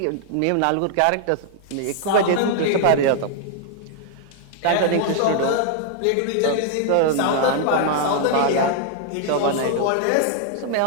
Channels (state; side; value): different; both; correlation 0.00